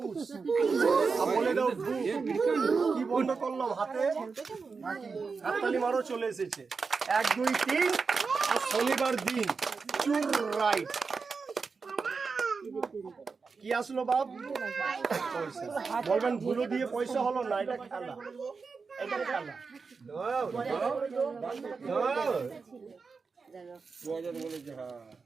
বলে দাও ভু। কি বন্ধ করলাম হাতে? হাততালি মারো, চলে এসেছে 1 2 3। আর শনিবার দিন চুর রাইট। কি আসলো বাপ? পয়সা। বলবেন ধুলো দিয়ে পয়সা হলো না, এটা খেলা। এটা খেলা।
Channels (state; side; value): quieter; left; 4.9 dB